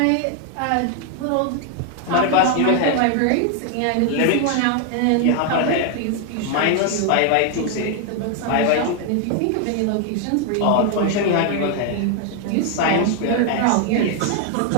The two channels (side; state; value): both; different; correlation 0.00